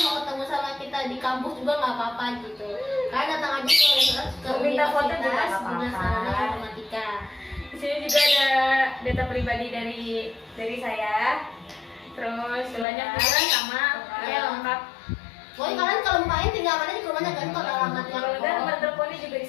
mau ketemu sama kita di kampus juga nggak apa-apa gitu. Kalian datang aja ke Mau minta foto juga nggak Universitas Bina apa-apa. Sarana Informatika. Di sini juga ada data pribadi dari saya. terus Jelas. banyak juga sama ya lengkap. Pokoknya kalian kalau mau main tinggal main di rumahnya kan kalau alamatnya. Kalau nggak nomor teleponnya juga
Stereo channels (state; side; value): drops out; right; at 12.9 s